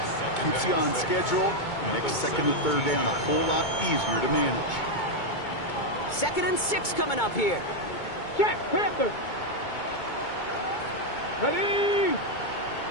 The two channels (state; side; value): late; right; 2.2 ms